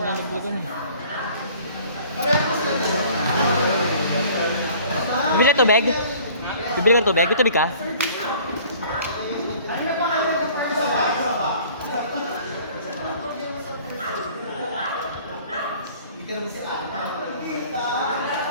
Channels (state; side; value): inverted; both; correlation -0.51